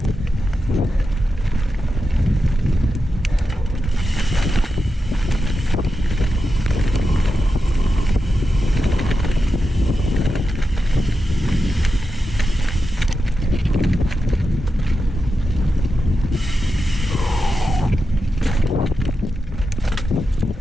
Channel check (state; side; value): normal; both; correlation 0.89